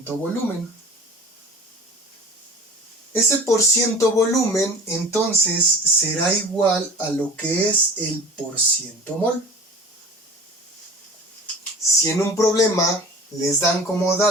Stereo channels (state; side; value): normal; both; correlation 0.40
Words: volumen. Ese porciento volumen entonces será igual a lo que es el porciento mol. Si en un problema les dan como